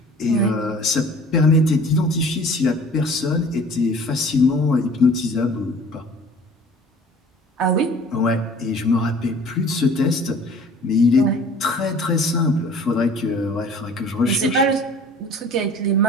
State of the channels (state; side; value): normal; both; correlation 0.48